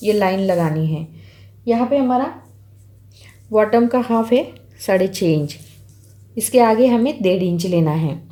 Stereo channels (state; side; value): identical; both; correlation 1.00